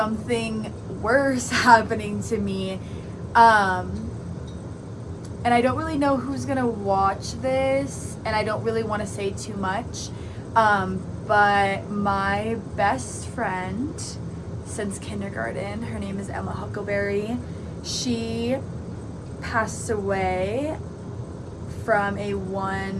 worse happening to me. And I don't really know who's gonna watch this, and I don't really want to say too much, but my best friend since kindergarten, her name is Emma Huckleberry, she passed away from a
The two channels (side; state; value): both; identical; correlation 1.00